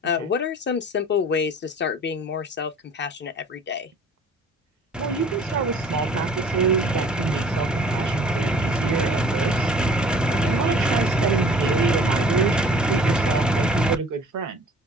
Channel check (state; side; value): normal; both; correlation 0.51